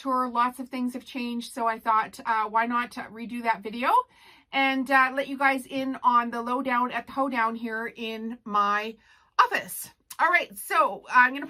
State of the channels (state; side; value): identical; both; correlation 1.00